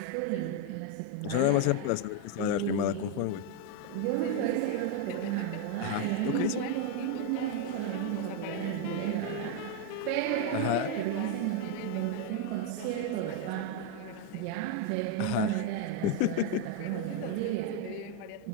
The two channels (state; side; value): different; both; correlation 0.01